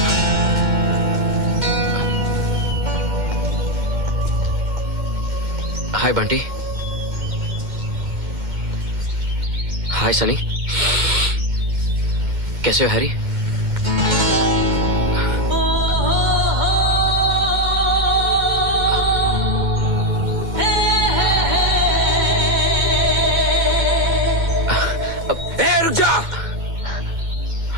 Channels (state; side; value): late; left; 2.1 ms